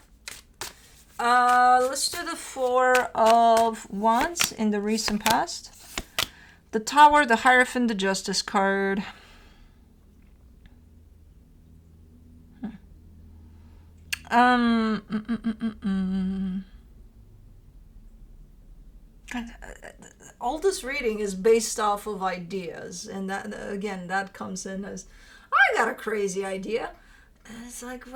Let's do the Four of Wands in the recent past. The Tower, the Hierophant, the Justice card. All this reading is based off of ideas, and that, again, that comes in as, I got a crazy idea. And it's like,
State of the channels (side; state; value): both; identical; correlation 1.00